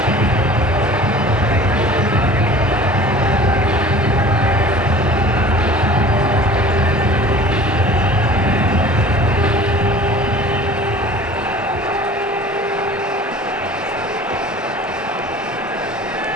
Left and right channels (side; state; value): both; normal; correlation 0.44